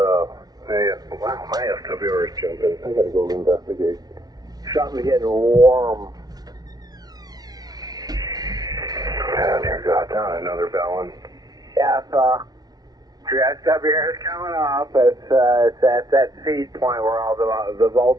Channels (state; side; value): late; left; 0.19 ms